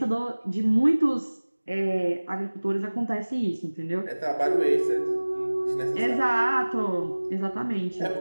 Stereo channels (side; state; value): both; inverted; correlation -1.00